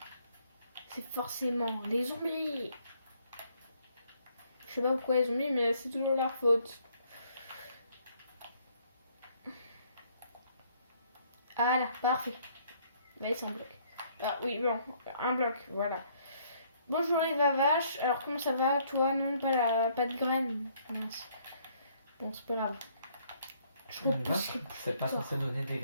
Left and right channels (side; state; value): both; inverted; correlation -0.65